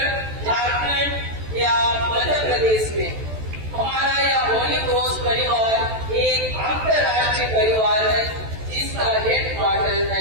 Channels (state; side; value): late; left; 14 ms